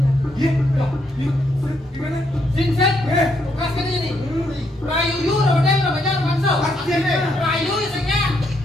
lagi. Iya, gimana? Ginseng, tugas kan ini. Rayu yu, rodeng, rodeng, bakso. Rayu isengnya,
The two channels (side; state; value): both; normal; correlation 0.75